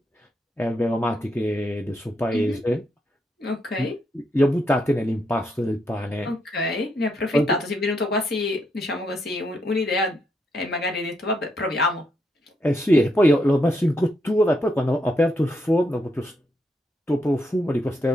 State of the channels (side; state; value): both; normal; correlation 0.79